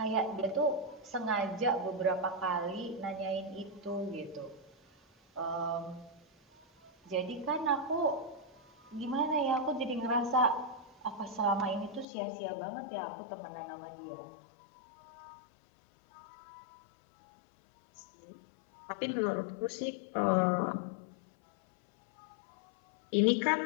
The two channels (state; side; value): drops out; right; at 12.1 s